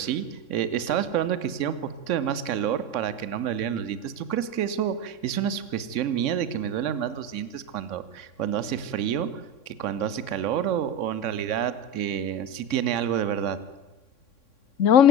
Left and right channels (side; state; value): right; late; 3.6 ms